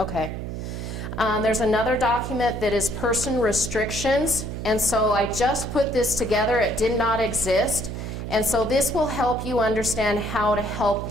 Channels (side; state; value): right; noise; hum, 6 dB below the sound